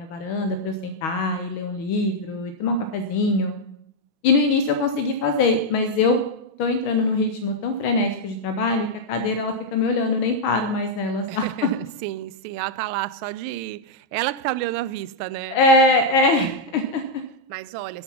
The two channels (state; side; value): late; right; 6.3 ms